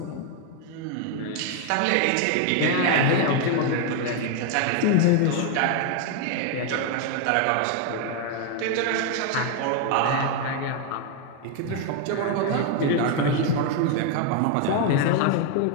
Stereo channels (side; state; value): both; different; correlation 0.01